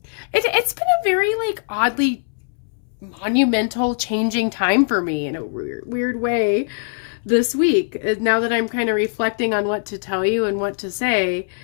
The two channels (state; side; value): silent; right; 65 dB below the other